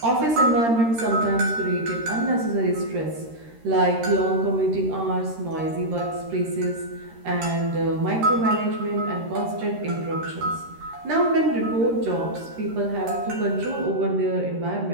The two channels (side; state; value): left; late; 13 ms